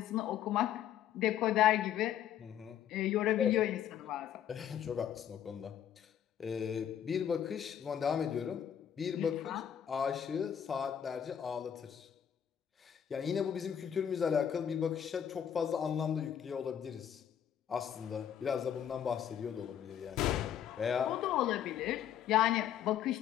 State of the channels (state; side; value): quieter; right; 9.6 dB